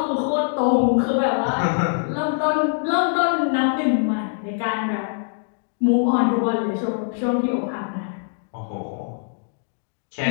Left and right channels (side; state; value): right; silent; digital silence